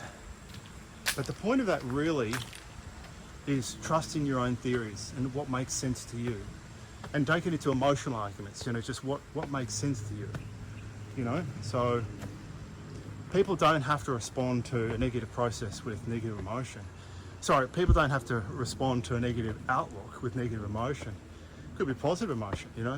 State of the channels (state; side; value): identical; both; correlation 1.00